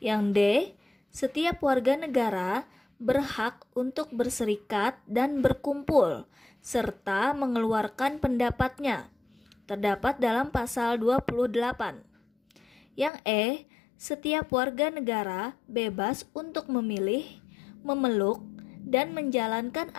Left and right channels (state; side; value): drops out; right; at 13.1 s